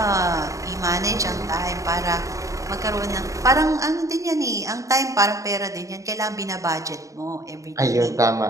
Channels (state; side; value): late; left; 0.16 ms